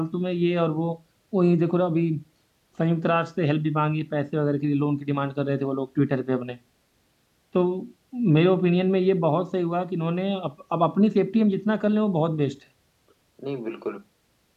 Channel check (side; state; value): both; identical; correlation 1.00